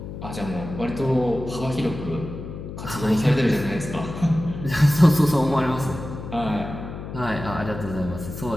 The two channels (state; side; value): noise; left; hum, 10 dB below the sound